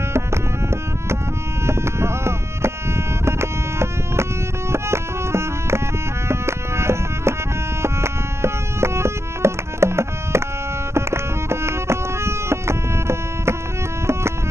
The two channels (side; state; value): left; late; 0.13 ms